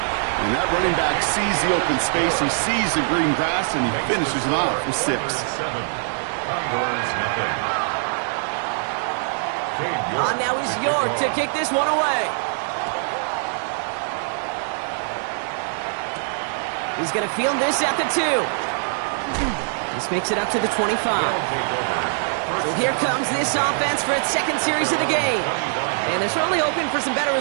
that running back sees the open space, he sees the green grass, and he finishes it off with 6. Now is York to kick this one away. He's going to field this at the 2. This makes it up to the 25. So here comes this offense for its 2nd series of the game. And they're certainly hoping for some better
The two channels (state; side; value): silent; left; digital silence